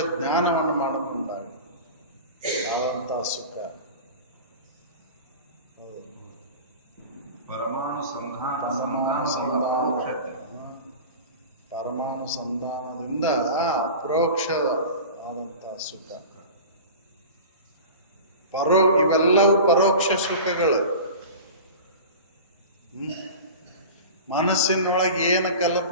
ಜ್ಞಾನವನ್ನು ಮಾಡಿಕೊಂಡಾಗ ಆದಂತ ಸುಖ. ಪರಮಾಣು ಪರಮಾಣು ಸಂಧಾನದಿಂದ ಅಪ್ರೋಕ್ಷ ಆದಂತ ಸುಖ. ಇವೆಲ್ಲವೂ ಪರೋಕ್ಷ ಸುಖಗಳು. ಮನಸ್ಸಿನೊಳಗೆ ಏನು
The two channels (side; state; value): both; inverted; correlation -0.34